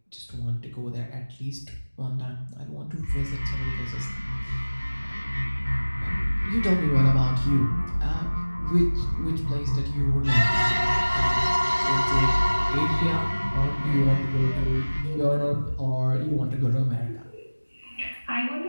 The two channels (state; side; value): inverted; both; correlation -1.00